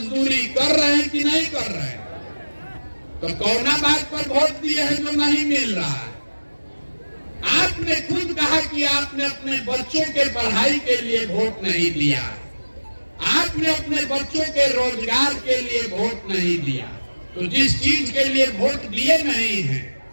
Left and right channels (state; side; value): inverted; both; correlation -1.00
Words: कर रहे हैं कि नहीं कर रहे हैं? तो कौना बात पर वोट दिए हैं जो नहीं मिल रहा है? आपने खुद कहा कि आपने अपने बच्चों के पढ़ाई के लिए वोट नहीं दिया, आपने अपने बच्चों के रोजगार के लिए वोट नहीं दिया, तो जिस चीज के लिए वोट दिए नहीं है